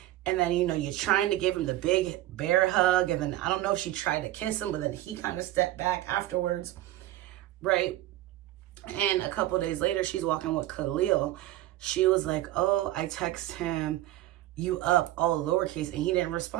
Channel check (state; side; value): quieter; left; 15.2 dB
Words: And then, you know, you're trying to give him the big bear hug. And then I don't know if she tried to kiss him, but then he kind of stepped back afterwards, right? And a couple days later, she's walking with Khalil. She was like, oh, I text him, you up, all lowercase, and he didn't